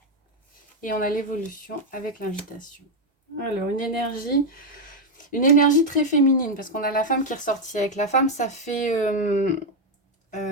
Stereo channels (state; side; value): normal; both; correlation 0.03